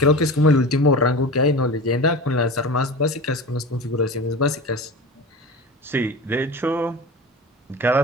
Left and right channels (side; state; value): both; normal; correlation 0.31